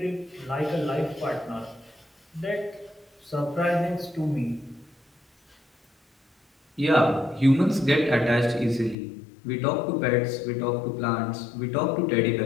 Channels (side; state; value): right; drops out; at 9.0 s